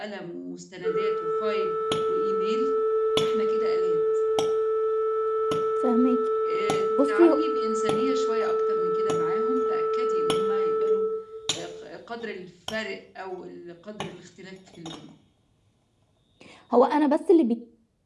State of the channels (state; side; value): identical; both; correlation 1.00